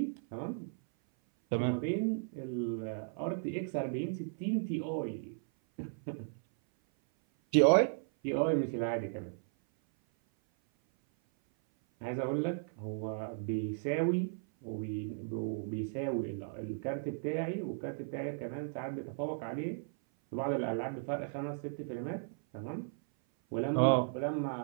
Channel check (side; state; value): left; silent; 54 dB below the other